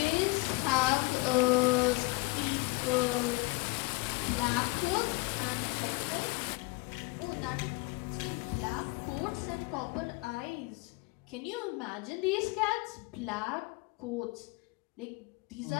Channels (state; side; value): quieter; right; 25.4 dB